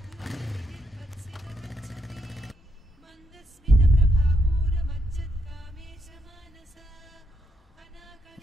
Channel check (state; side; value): normal; both; correlation 0.78